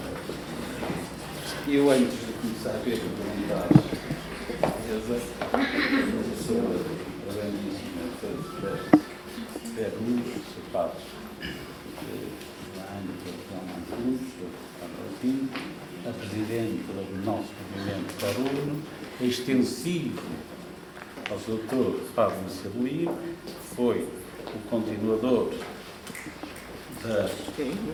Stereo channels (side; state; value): both; identical; correlation 1.00